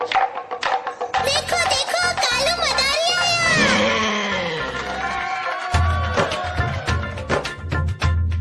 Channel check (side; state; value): both; identical; correlation 1.00